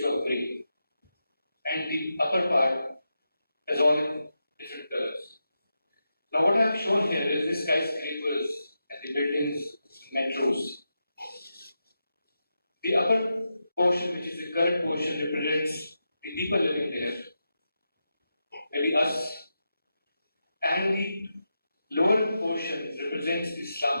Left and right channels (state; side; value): inverted; both; correlation -0.88